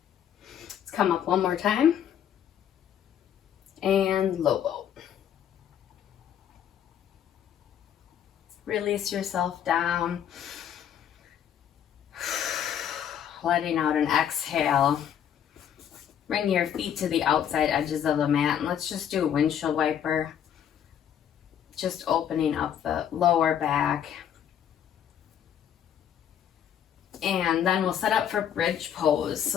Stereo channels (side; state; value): right; quieter; 9.4 dB